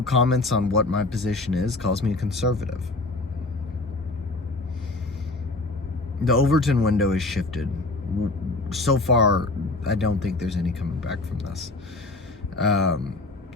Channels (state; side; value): quieter; right; 3.1 dB